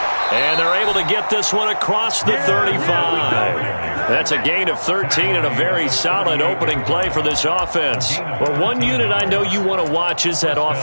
And they're able to get this one across the 35. That's a gain of 13 and a very solid opening play for this offense. Well, one unit I know you want to watch is that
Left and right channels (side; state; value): both; inverted; correlation -1.00